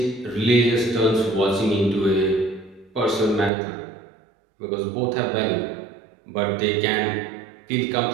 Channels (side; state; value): left; drops out; at 3.5 s